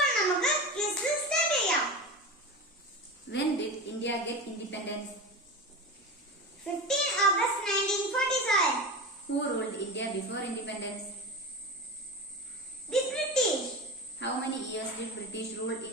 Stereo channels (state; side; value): normal; both; correlation 0.26